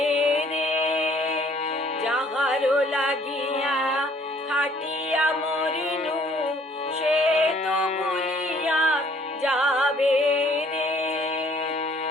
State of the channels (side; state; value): both; normal; correlation 0.60